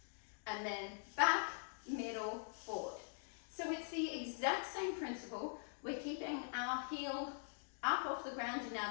and then back, middle, forward. So it's the exact same principle. We're keeping our heel up off the ground in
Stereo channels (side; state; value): right; silent; digital silence